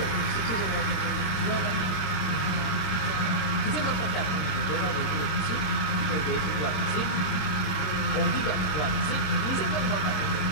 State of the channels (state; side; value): late; right; 27 ms